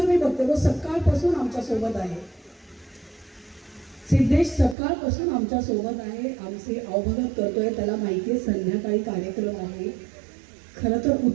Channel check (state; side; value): drops out; left; at 4.8 s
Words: मी बघते तो सकाळपासून आमच्या सोबत आहे. सिद्धेश सकाळपासून आमच्या सोबत आहे, आमचे अवभगत करतोय. त्याला माहिती आहे संध्याकाळी कार्यक्रम आहे. खरं तर